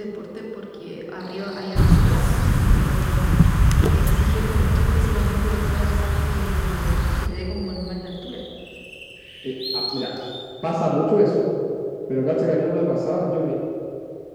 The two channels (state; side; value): identical; both; correlation 1.00